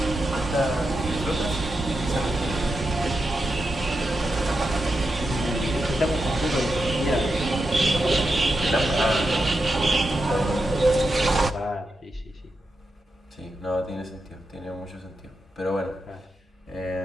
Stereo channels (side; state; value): both; normal; correlation 0.88